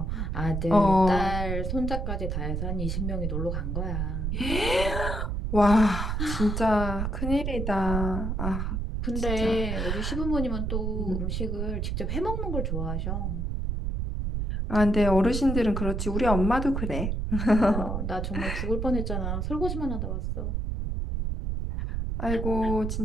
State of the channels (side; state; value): right; noise; rumble, 1 dB below the sound